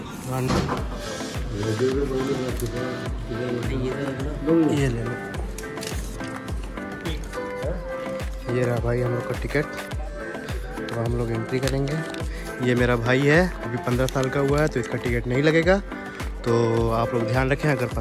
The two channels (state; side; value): identical; both; correlation 1.00